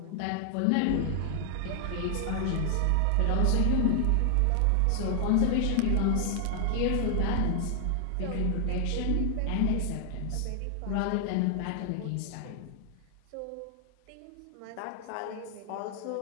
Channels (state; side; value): different; both; correlation 0.00